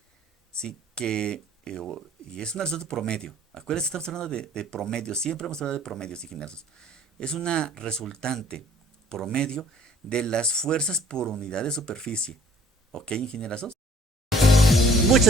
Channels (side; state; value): both; normal; correlation 0.55